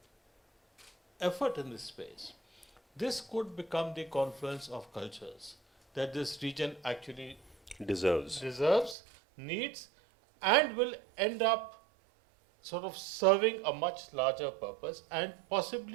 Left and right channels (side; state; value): left; drops out; at 9.0 s